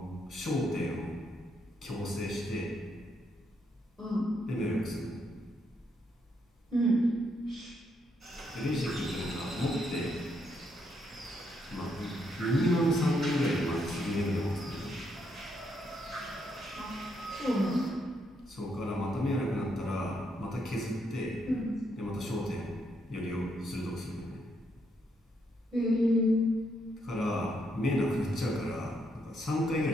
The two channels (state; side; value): normal; both; correlation 0.76